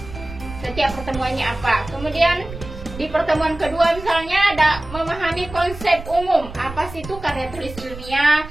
setiap pertemuannya apa. Kemudian di pertemuan kedua misalnya ada memahami konsep umum, apa sih itu karya tulis ilmiah.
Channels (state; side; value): noise; right; rumble, 13 dB below the sound